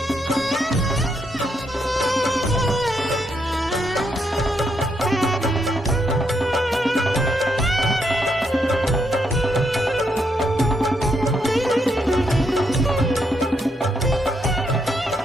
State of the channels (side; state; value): both; normal; correlation 0.78